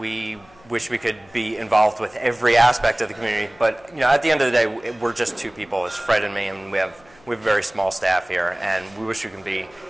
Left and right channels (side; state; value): left; noise; hum, 28 dB below the sound